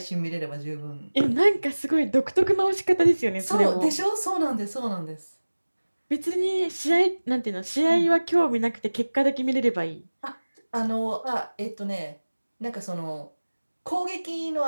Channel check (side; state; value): both; inverted; correlation -1.00